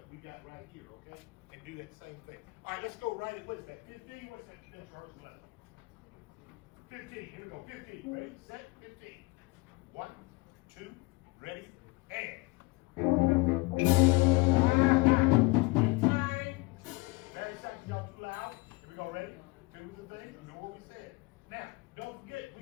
we got right here, okay, and do that same thing. All right, let's go right at, what is that? 15. What's that next rehearsal level? 15. Here we go. 15. Ready, set, 15. 1, 2, ready, and.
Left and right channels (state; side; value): quieter; right; 24.3 dB